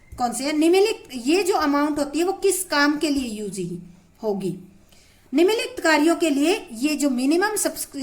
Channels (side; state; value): both; identical; correlation 1.00